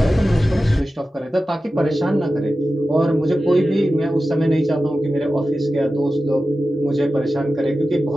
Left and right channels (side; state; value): both; normal; correlation 0.93